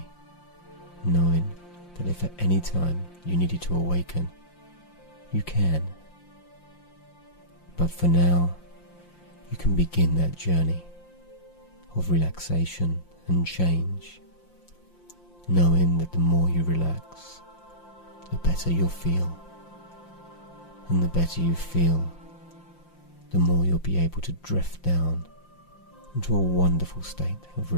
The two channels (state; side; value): late; right; 5.7 ms